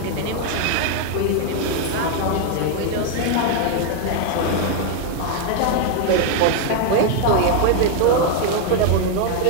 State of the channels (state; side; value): different; both; correlation 0.00